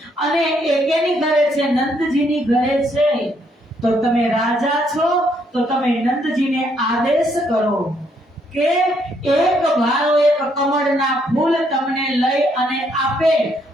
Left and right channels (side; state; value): both; normal; correlation 0.71